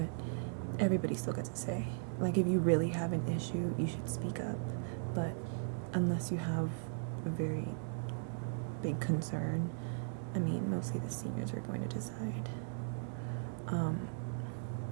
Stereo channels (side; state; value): left; silent; digital silence